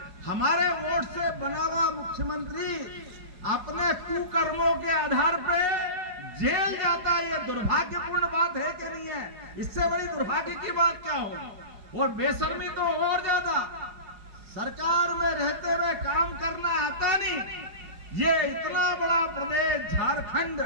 हमारे वोट से बना हुआ मुख्यमंत्री अपने कुकर्मों के आधार पे जेल जाता है। ये दुर्भाग्यपूर्ण बात है कि नहीं है? इससे बड़ी दुर्भाग्य की बात क्या होगी? और बेशर्मी तो और ज्यादा, सरकार में रहते हुए काम करना आता नहीं। ये इतना बड़ा प्रदेश झारखंड,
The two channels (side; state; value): left; late; 5.4 ms